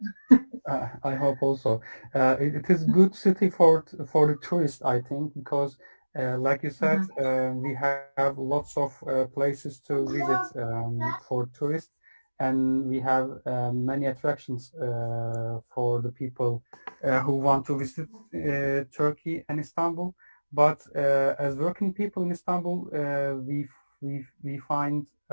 I hope also. It is good city for the tourists, I think, because like you said, we have lots of places to visit for tourists, and we have many attractions for the people who want to visit Turkey and Istanbul. But as working people in Istanbul, we find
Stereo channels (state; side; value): inverted; both; correlation -1.00